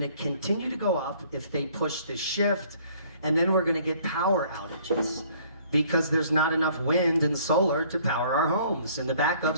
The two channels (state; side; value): inverted; both; correlation -0.58